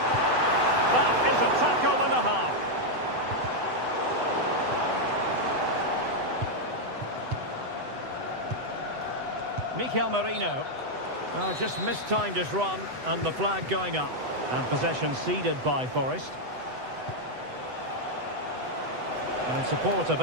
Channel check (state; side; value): late; left; 8.0 ms